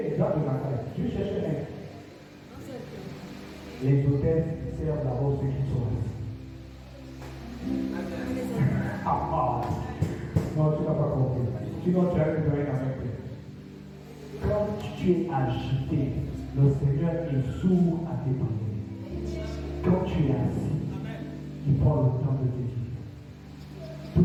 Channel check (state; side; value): identical; both; correlation 1.00